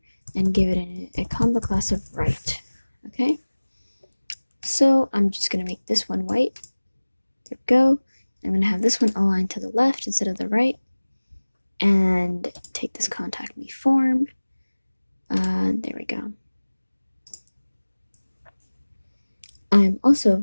and give it a combo class of right, okay? So I'm just going to make this one white. There we go. I'm going to have this one aligned to the left instead of the right, and take this contact me form. There we go. I'm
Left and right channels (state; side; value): inverted; both; correlation -1.00